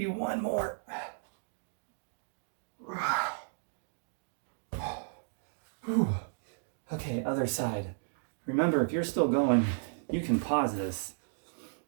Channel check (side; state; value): left; silent; digital silence